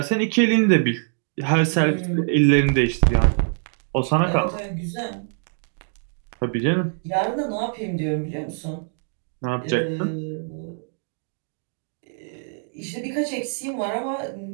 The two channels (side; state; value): left; silent; 63 dB below the other